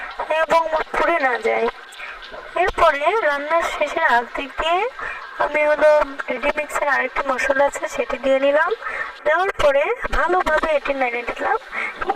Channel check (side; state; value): both; identical; correlation 1.00